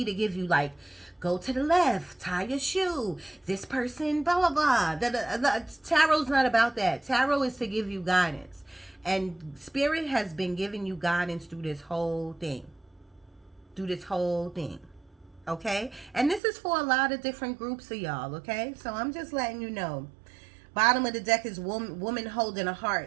to give you, like, go to the left, tie your shoe, this person, blah, blah, blah. Tarot's not about that. Tarot is to give you guidance. And spirit has been giving you guidance through this whole thing. Okay? And this is for a lot of different groups of y'all, okay? So I'm just letting you know. Bottom of the deck is woman holding a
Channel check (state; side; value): drops out; left; at 16.4 s